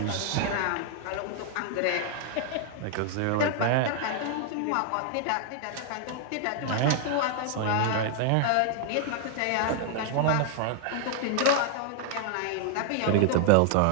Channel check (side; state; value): both; different; correlation 0.00